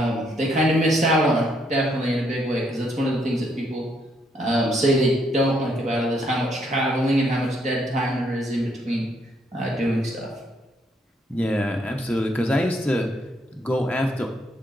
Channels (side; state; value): both; normal; correlation 0.72